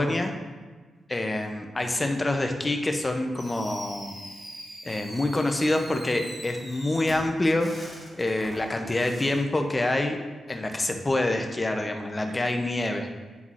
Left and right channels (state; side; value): normal; both; correlation 0.94